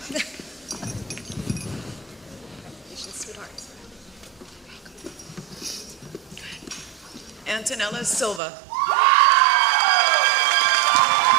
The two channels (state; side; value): drops out; left; at 8.4 s